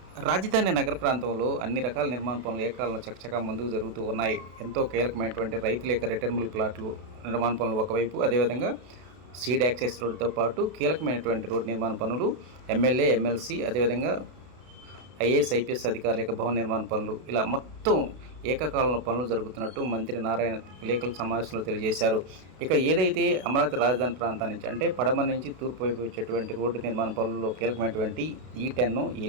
రాజధాని నగర ప్రాంతంలో అన్ని రకాల నిర్మాణ పనులు ఏకాలంలో చకచకా ముందుకు జరుగుతూ ఉన్నాయి. ఎంతో కీలకమైనటువంటి రైతుల యొక్క రిటర్నబుల్ ప్లాట్లు నిర్మాణ పనులు ఒకవైపు, అదేవిధంగా సీడ్ యాక్సెస్ రోడ్డుతో పాటు కీలకమైనటువంటి రోడ్డు నిర్మాణ పనులు, ఎమ్మెల్యే, ఎమ్మెల్సీ, అదేవిధంగా ఐఏఎస్, ఐపీఎస్ అధికారుల యొక్క భవన నిర్మాణ పనులు, ఇలా మొత్తం ఏకకాలంలో పనులు జరుగుతున్నట్టు మంత్రి నారాయణ విలేకరుల సమావేశంలో తెలియజేశారు. ఇక ఏదైతే అమరావతి రాజధాని ప్రాంతం నుంచి అంటే పడమర నుంచి తూర్పు వైపు వచ్చేటువంటి రోడ్డు నిర్మాణ పనుల్లో కీలకమైనటువంటి E10,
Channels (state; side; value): late; left; 32 ms